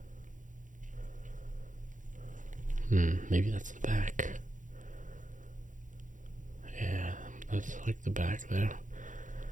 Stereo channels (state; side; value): late; left; 0.37 ms